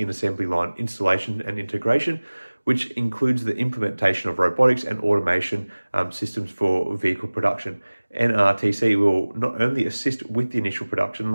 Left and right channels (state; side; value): inverted; both; correlation -1.00